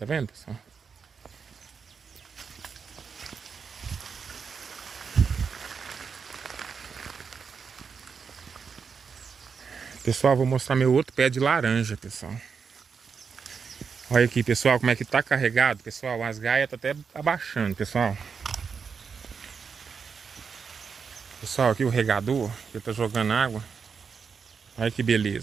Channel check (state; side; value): quieter; left; 5.9 dB